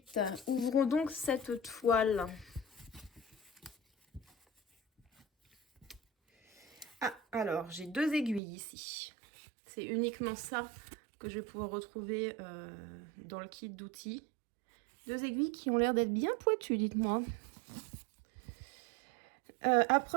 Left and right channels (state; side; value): drops out; left; at 8.4 s